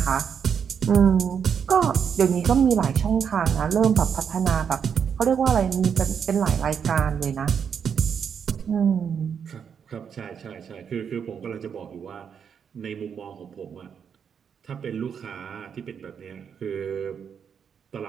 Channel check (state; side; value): quieter; left; 7.3 dB